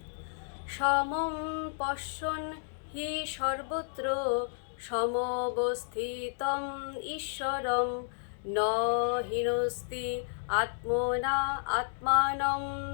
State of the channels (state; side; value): silent; right; digital silence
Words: সমং পশ্যন হি সর্বত্র সমবস্থিতম ঈশ্বরম ন হিনস্তি আত্মনা আত্মানম